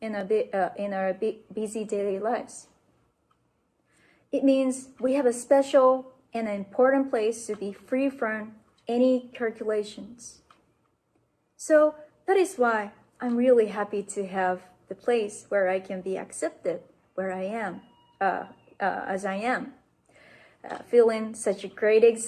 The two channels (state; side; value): identical; both; correlation 1.00